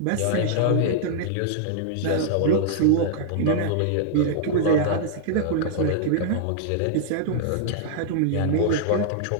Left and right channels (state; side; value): different; both; correlation -0.01